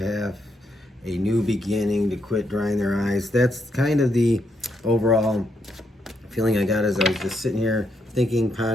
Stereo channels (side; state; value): both; normal; correlation 0.78